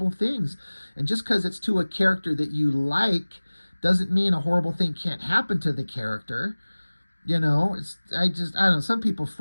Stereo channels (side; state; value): both; inverted; correlation -1.00